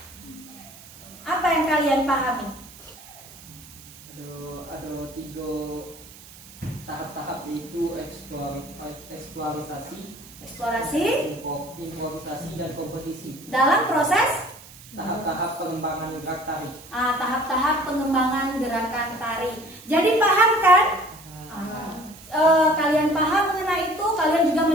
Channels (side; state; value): right; noise; hiss, 20 dB below the sound